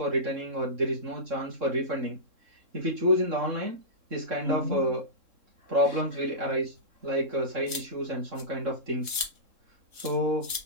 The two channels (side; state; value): left; late; 3.7 ms